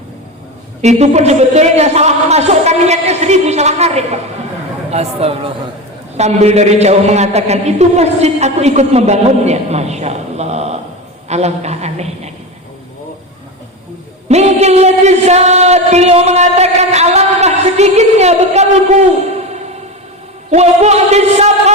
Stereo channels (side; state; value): both; normal; correlation 0.22